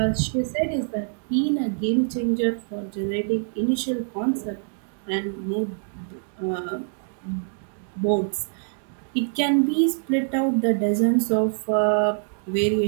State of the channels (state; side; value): silent; left; digital silence